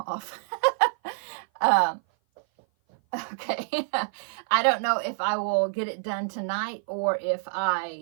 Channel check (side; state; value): left; silent; 56 dB below the other